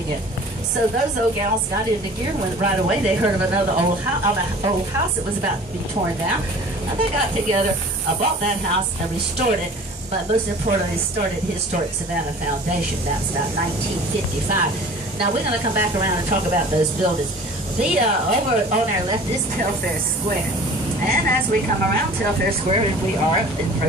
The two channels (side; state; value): both; normal; correlation 0.45